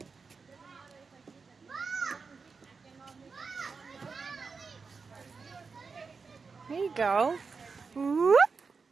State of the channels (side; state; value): left; quieter; 4.9 dB